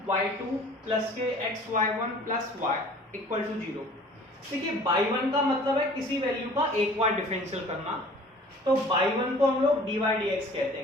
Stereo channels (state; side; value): normal; both; correlation 0.48